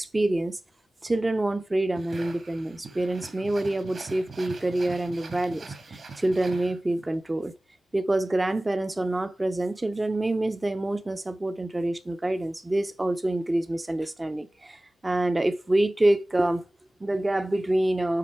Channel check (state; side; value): normal; both; correlation 0.98